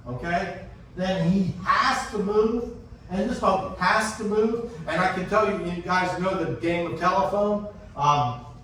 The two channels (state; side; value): identical; both; correlation 1.00